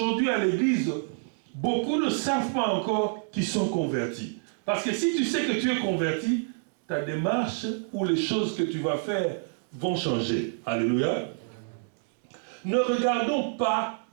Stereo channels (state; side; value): silent; left; digital silence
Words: à l'église, beaucoup ne savent pas encore qu'ils sont convertis. Parce que si tu sais que tu es converti, ta démarche ou les choses que tu vas faire vont changer. Alléluia. Ne regardons pas